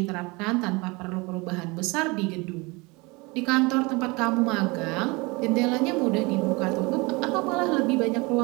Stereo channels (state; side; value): quieter; left; 25.7 dB